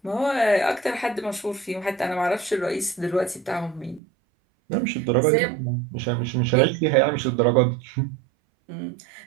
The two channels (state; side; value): drops out; left; at 4.0 s